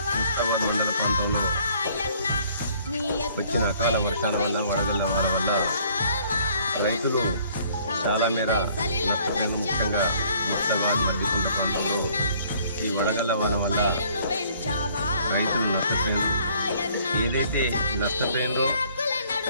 మండల ప్రాంతంలో వచ్చిన అకాల వర్షాల వల్ల వడగళ్ల వాన వల్ల రైతులు చాలా మేర నష్టపోయిన. ముఖ్యంగా ముస్తాబాద్ మధ్యకొండ ప్రాంతంలో ఈ వడగళ్ల వాన వల్ల రైతులు నష్టపోయారు. ఏదైతే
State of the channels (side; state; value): both; inverted; correlation -0.59